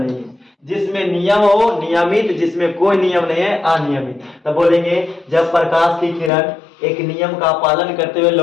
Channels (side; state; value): right; drops out; at 6.3 s